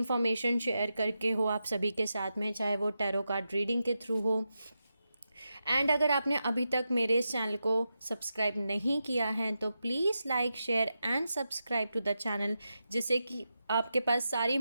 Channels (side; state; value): both; inverted; correlation -0.88